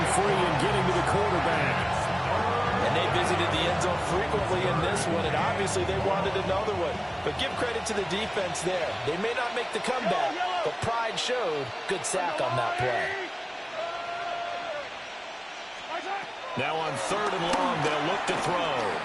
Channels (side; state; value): both; identical; correlation 1.00